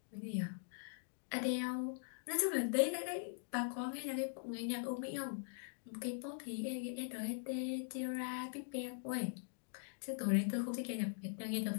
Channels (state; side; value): silent; right; digital silence